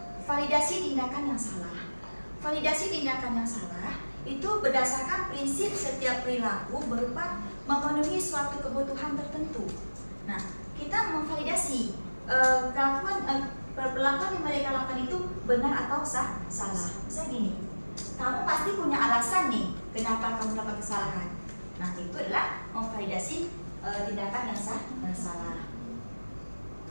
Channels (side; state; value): both; inverted; correlation -1.00